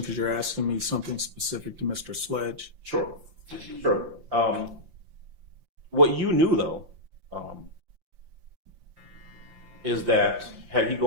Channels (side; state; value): left; late; 5.8 ms